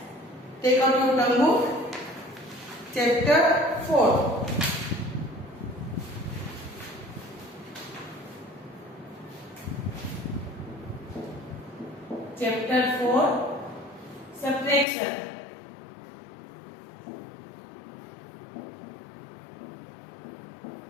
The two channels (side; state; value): right; drops out; at 14.9 s